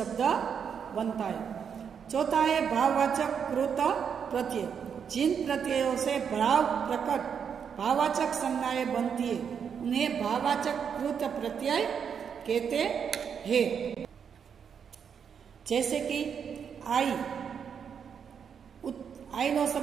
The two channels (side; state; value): left; quieter; 7.3 dB